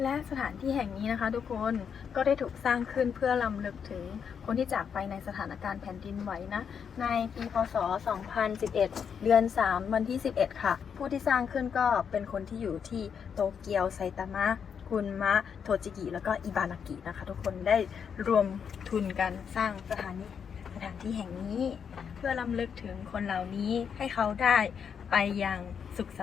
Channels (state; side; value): quieter; right; 7.1 dB